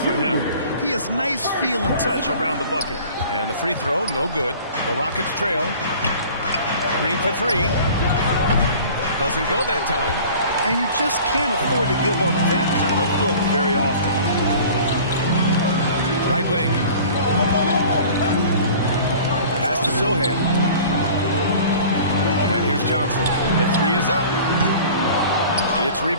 him. He has nice feel and touch around the bucket. And the free throw, no good. The Rockets trail. Green for 3. Doesn't go that time. And you just can't afford to give up that kind of look very often. Right wing. Pass to Sohan. And here's Johnson. The 3 is up. It's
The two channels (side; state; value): both; inverted; correlation -0.45